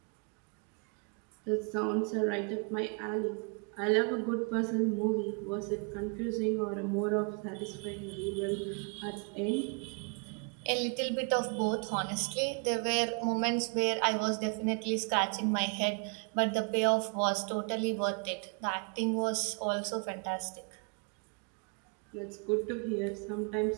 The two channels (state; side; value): quieter; left; 36.6 dB